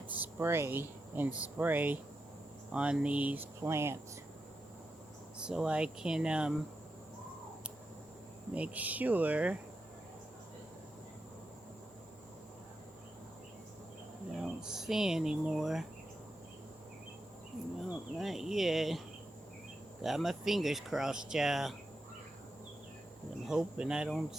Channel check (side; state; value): both; normal; correlation 0.87